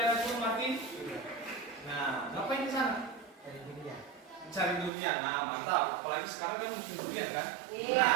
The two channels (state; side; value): drops out; left; at 4.9 s